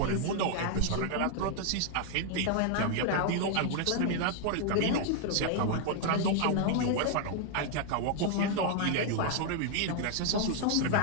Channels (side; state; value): both; different; correlation 0.00